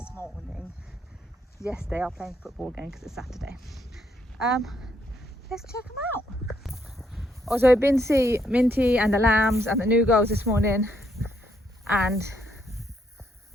morning. Yes, they are playing football again because it's Saturday. Let's check them out. Also, I've been to see Minty and the lambs and the new girls this morning, and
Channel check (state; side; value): normal; both; correlation 0.73